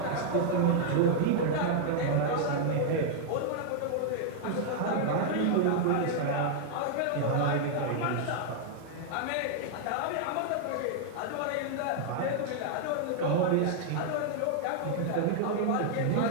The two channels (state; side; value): different; both; correlation -0.01